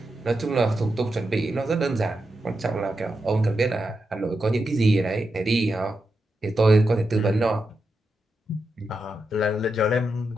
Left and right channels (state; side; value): normal; both; correlation 0.87